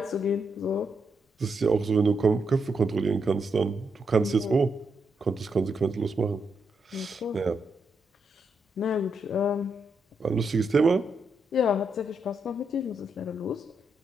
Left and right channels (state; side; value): normal; both; correlation 0.81